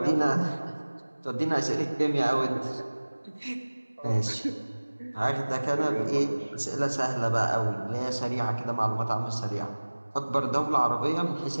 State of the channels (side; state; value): both; inverted; correlation -1.00